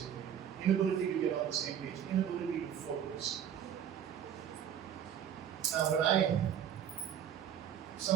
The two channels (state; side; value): quieter; left; 9.2 dB